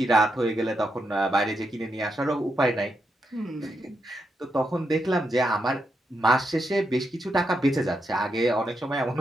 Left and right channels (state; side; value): normal; both; correlation 0.83